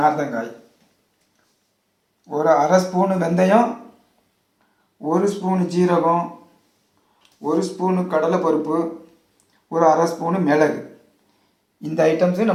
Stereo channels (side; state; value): both; identical; correlation 1.00